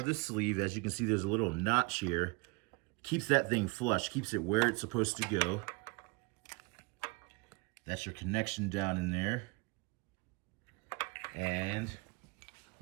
the sleeve. As you can see, there's a little notch here. Keeps that thing flush, keeps it where it's supposed to go. That's your connection down in there. And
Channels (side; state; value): left; quieter; 28.7 dB